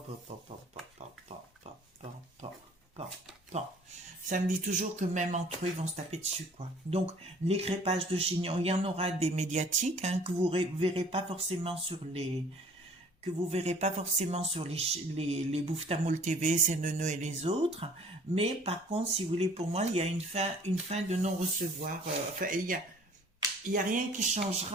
Ça me dit toujours que même entre eux, ils vont se taper dessus, quoi. Donc, les crépages de chignons, il y en aura des médiatiques, hein, que vous verrez pas forcément sur les... les Bouffe-Tamoul TV, CNN et les autres. Mais, par contre, si vous voulez, pour moi, il y a une fin de non-recevoir. Enfin, il y a rien qui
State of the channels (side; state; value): both; normal; correlation 0.53